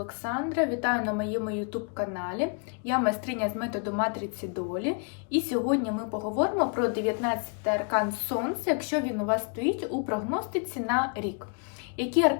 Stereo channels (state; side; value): quieter; right; 39.7 dB